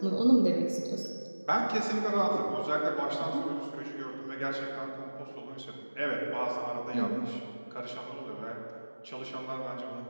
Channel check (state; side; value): inverted; both; correlation -1.00